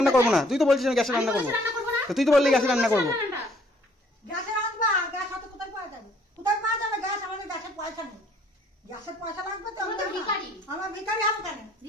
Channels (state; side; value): normal; both; correlation 0.61